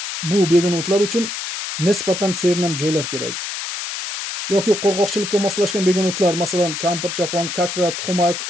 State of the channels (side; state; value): left; noise; hiss, 5 dB below the sound